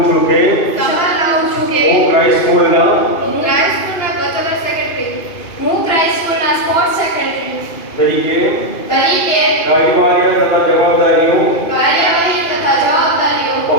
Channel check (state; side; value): late; right; 2.5 ms